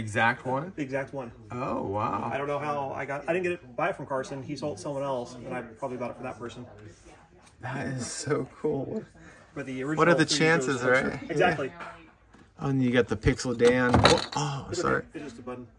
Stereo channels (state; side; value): identical; both; correlation 1.00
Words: one? The exact one. Oh wow. I don't know how I didn't buy it from Carson. He sold someone else, and I probably bought it for that person. That is so cool. But the original. What are the chances, right? Exactly. Yeah. Oh, and you got the Pixel Dan. Oh, sorry. It's just a button.